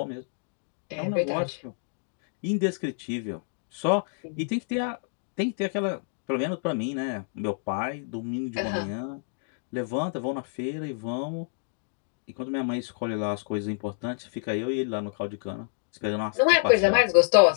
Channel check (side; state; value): right; silent; digital silence